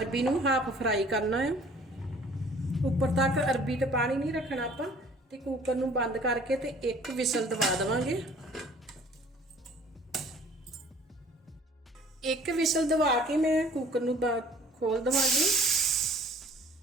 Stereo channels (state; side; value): normal; both; correlation 0.52